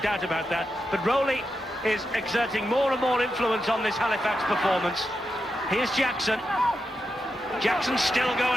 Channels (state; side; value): normal; both; correlation 0.87